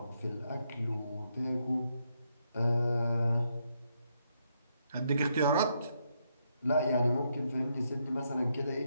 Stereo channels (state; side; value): inverted; both; correlation -0.78